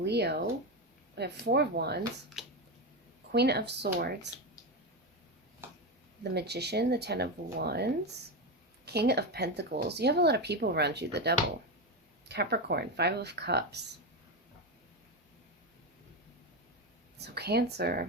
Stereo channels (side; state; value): both; normal; correlation 0.13